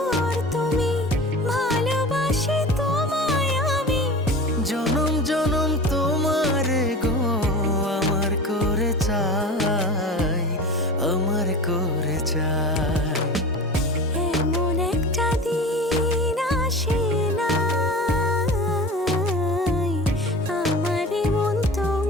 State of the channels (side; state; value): both; normal; correlation 0.34